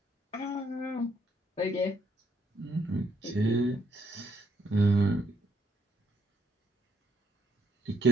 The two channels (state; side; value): normal; both; correlation 0.72